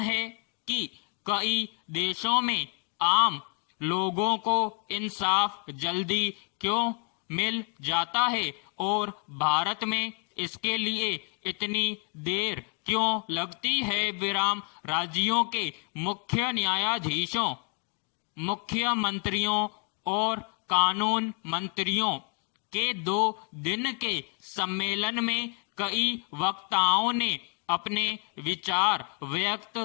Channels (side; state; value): right; quieter; 39.5 dB